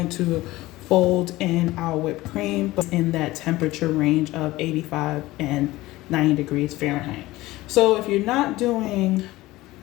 to fold in our whipped cream, but in that temperature range of 85 and 90 degrees Fahrenheit. So if you're not doing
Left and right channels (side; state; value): right; quieter; 18.3 dB